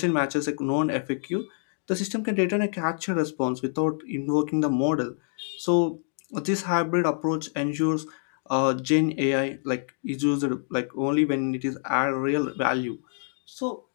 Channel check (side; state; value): right; silent; digital silence